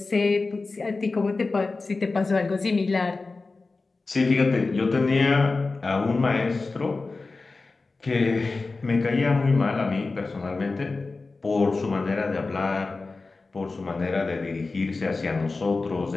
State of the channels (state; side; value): quieter; right; 3.7 dB